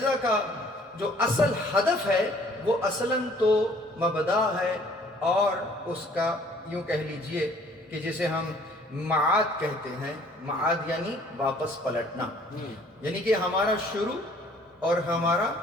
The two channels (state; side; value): normal; both; correlation 0.57